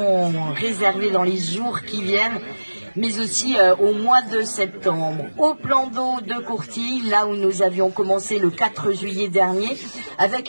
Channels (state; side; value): inverted; both; correlation -1.00